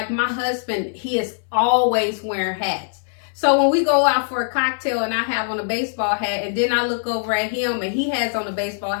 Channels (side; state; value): right; silent; 62 dB below the other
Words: my husband, he is always wearing hats. So when we go out for a cocktail and I have on a baseball hat, and then I look over at him and he has on a baseball